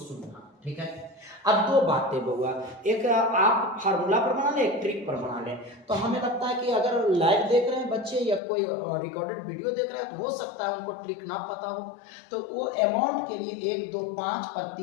ठीक है, अब दो बातें बउआ, एक आप फार्मूला पर बना ले, एक ट्रिक पर बना ले। तो हमें लगता है कि अगर लाइव देख रहे हैं बच्चे या कोई रिकॉर्डेड वीडियो देख रहे हैं, तो हो सकता है उनको ट्रिक ना पता हो, तो वो अमाउंट के लिए 1 2 5 पर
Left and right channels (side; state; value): right; drops out; at 8.4 s